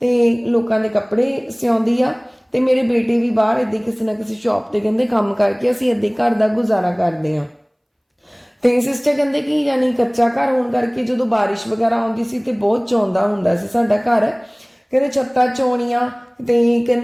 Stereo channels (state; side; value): identical; both; correlation 1.00